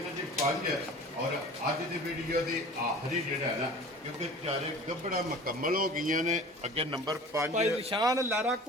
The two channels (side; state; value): both; normal; correlation 0.42